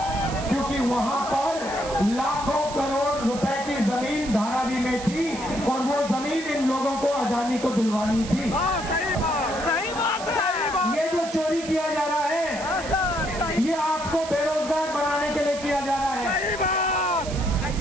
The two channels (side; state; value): right; noise; hiss, 12 dB below the sound